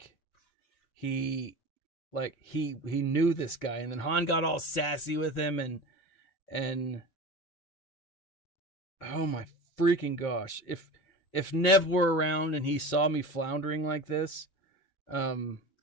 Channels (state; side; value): late; right; 5.0 ms